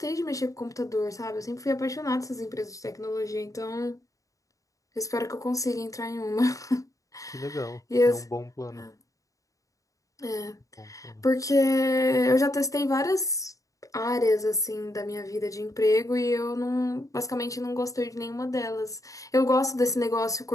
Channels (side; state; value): right; late; 0.16 ms